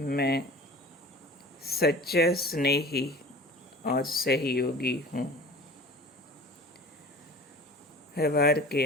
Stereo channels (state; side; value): normal; both; correlation 0.40